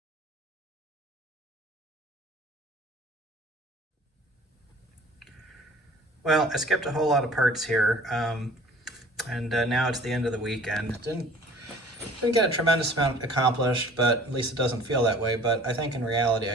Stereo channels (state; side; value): normal; both; correlation 0.48